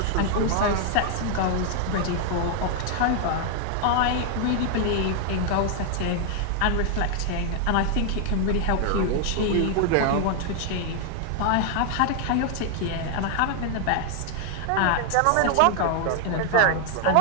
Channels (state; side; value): different; both; correlation 0.00